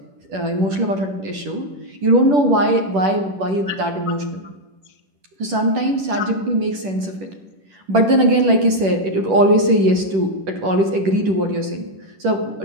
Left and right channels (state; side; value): late; left; 10 ms